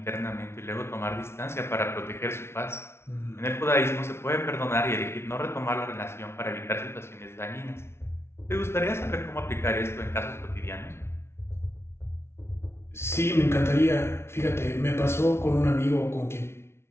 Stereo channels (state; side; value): late; right; 0.12 ms